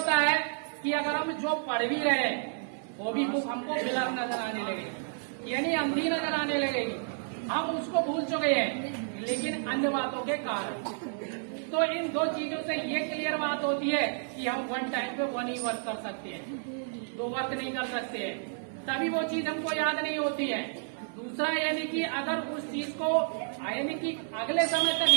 है कि अगर हम जो पढ़ भी रहे हैं वो भी बुक हमको ब्लर नजर आने लगे, यानी अंधी नजर आने लगेगी। हम उसको भूल चुके हैं, लेकिन अन्य बातों के कारण। तो इन दो चीजों से ये क्लियर बात होती है कि हम वन टाइम पे वन ही वर्क कर सकते हैं, दो वर्क नहीं कर सकते हैं, तभी वो चीज हमको याद नहीं होती है। दूसरा यानी कि अगर उस चीज को यानी कि अगले समय तक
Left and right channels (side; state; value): left; silent; 57 dB below the other